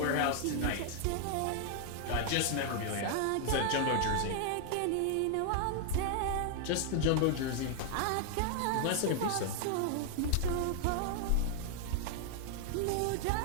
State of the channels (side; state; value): both; different; correlation 0.00